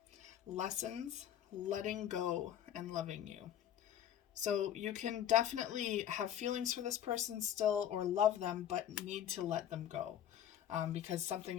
Lessons, letting go, and loving you. So you can definitely have feelings for this person still or love them, but need to let them go because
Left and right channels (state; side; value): quieter; right; 10.6 dB